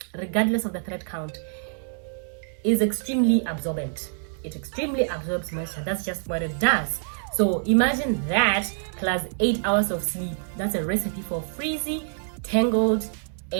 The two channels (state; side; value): silent; left; 61 dB below the other